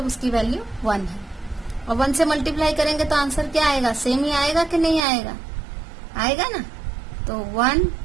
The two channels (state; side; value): drops out; left; at 5.0 s